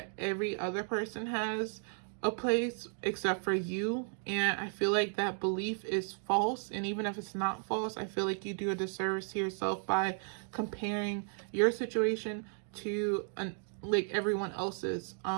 every other person has a place except for you, and I feel like that belief is false. And even if it's not false, I feel like you do a disservice to yourself by comparing your situation to like everyone else's.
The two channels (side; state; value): left; silent; 55 dB below the other